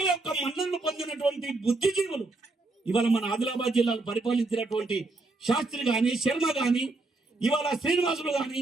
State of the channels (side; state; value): left; quieter; 3.3 dB